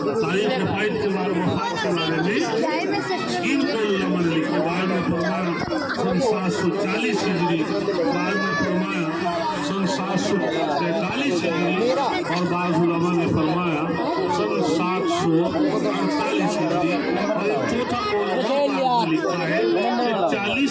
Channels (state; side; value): identical; both; correlation 1.00